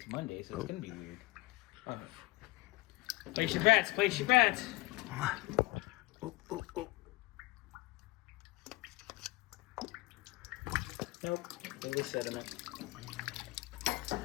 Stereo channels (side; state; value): right; quieter; 20.9 dB